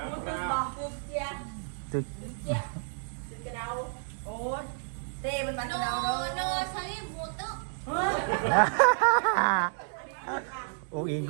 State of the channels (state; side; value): silent; left; digital silence